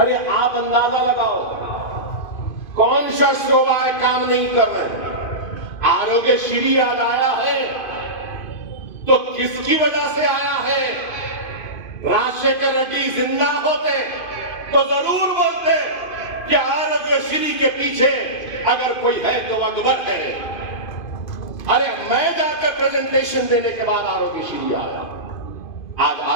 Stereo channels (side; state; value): right; late; 2.5 ms